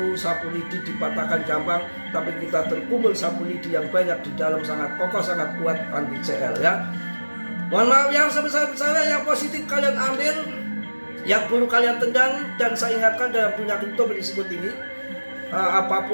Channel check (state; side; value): inverted; both; correlation -1.00